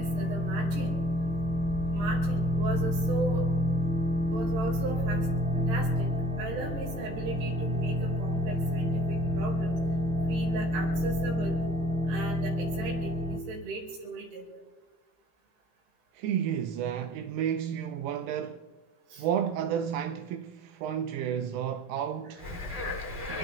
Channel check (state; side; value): late; left; 18 ms